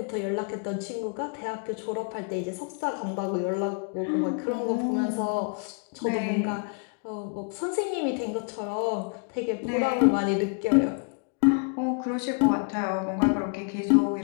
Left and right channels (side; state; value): right; quieter; 38.3 dB